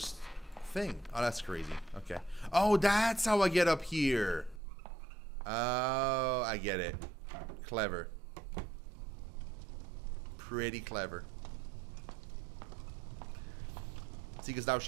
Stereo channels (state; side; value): drops out; left; at 4.6 s